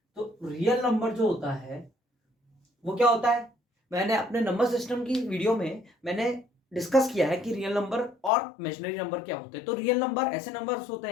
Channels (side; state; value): right; drops out; at 8.3 s